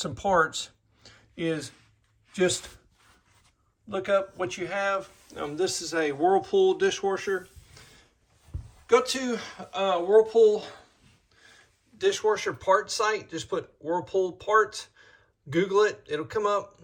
some parts is just look up what you have. This is a Whirlpool dishwasher. Go to Whirlpool dishwasher parts site, just put Whirlpool parts, Google it, it'll come up.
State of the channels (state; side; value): identical; both; correlation 1.00